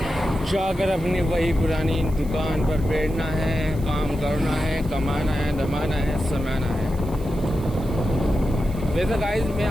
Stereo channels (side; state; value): right; noise; hiss, 22 dB below the sound